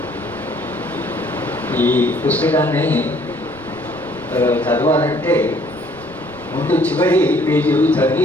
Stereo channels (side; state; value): right; noise; rumble, 22 dB below the sound